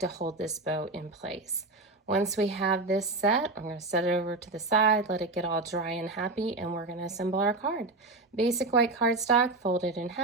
hold this bow in place. Once we have this set, I'm going to set it over to the side, let it get all dry and happy, and we're going to assemble our card. Basic white cardstock, fold it in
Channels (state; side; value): quieter; left; 3.1 dB